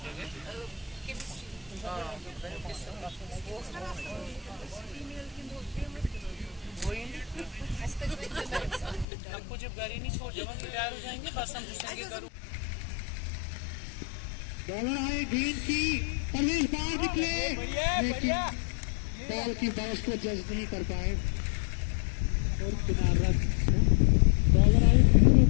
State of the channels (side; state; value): right; drops out; at 9.1 s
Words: हमको जब गाड़ी नहीं छोड़ जब हम तैयार हो जाएंगे बस हम पूछेंगे करूँ बॉलर आए गेंद की परवेज बाहर निकले लेकिन बॉल की बाउंस को जज नहीं कर पाए और किनारा बॉलर आए